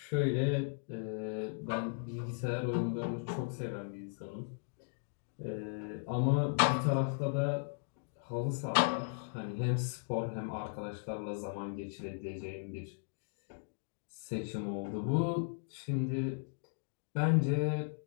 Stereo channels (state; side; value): silent; right; digital silence